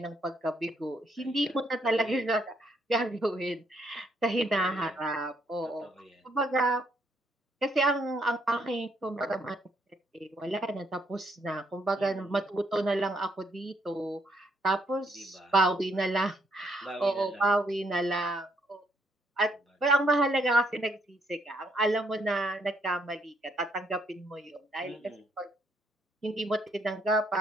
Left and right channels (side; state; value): both; normal; correlation 0.72